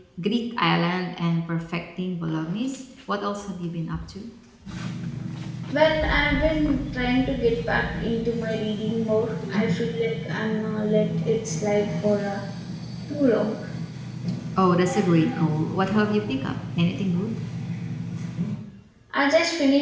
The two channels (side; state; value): both; identical; correlation 1.00